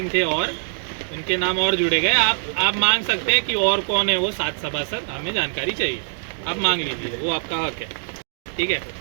थे और उनके नाम और जुड़े गए. आप मांग सकते हैं कि और कौन है वो 7 सभासद, हमें जानकारी चाहिए. आप मांग लीजिए, वो आपका हक है. ठीक आहे.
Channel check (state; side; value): silent; left; digital silence